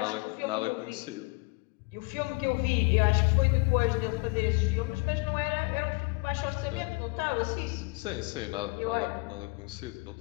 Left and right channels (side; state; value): right; quieter; 27.5 dB